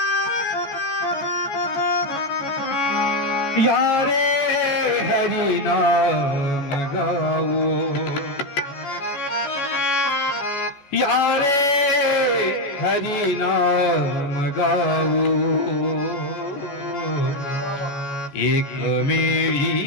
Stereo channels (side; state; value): right; late; 14 ms